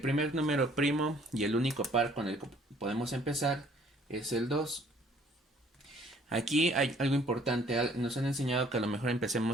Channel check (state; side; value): normal; both; correlation 0.59